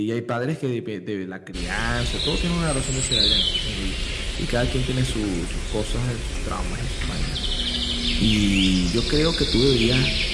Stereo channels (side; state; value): both; identical; correlation 1.00